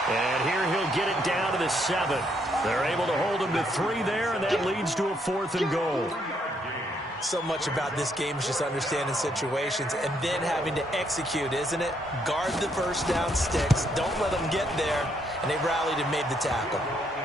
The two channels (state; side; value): normal; both; correlation 0.73